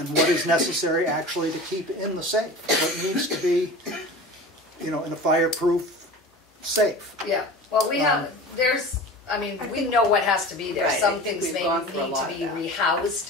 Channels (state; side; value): normal; both; correlation 0.36